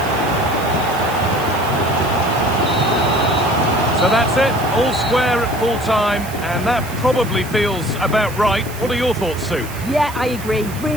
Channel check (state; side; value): noise; right; hiss, 16 dB below the sound